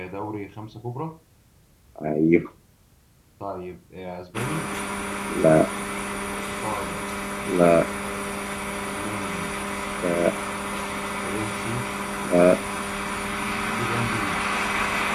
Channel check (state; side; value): identical; both; correlation 1.00